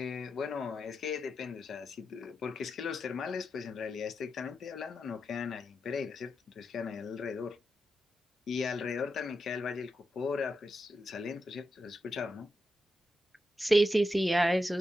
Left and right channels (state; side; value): normal; both; correlation 0.87